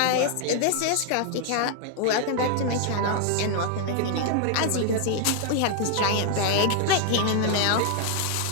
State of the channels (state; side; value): different; both; correlation 0.00